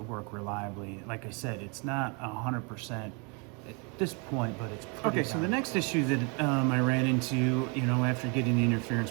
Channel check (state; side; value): quieter; left; 33.2 dB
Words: work reliably. Like I said, it's not 100% at this point, but it's pretty. Okay, so the next issue that I ran into, after getting the interference